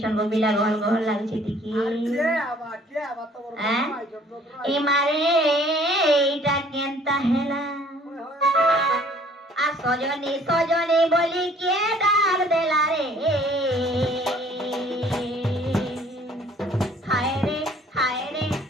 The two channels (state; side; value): normal; both; correlation 0.56